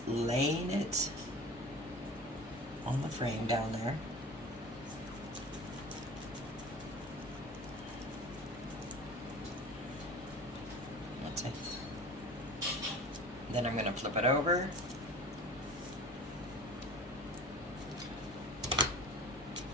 laying it on the frame down there. That's it. Then I'm going to flip it over.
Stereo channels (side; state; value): both; normal; correlation 0.38